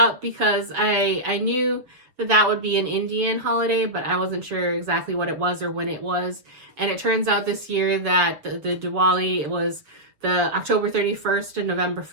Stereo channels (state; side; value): late; left; 7.1 ms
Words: because I knew that would be an Indian holiday, but I wasn't sure exactly what it was or when it was. And it turns out this year that the Diwali was the October 31st and November